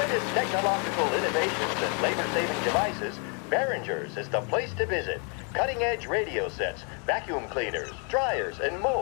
technological innovations and labor-saving devices, Behringer's is the place to visit. Cutting-edge radio sets, vacuum cleaners, dryers, and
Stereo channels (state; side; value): quieter; right; 37.6 dB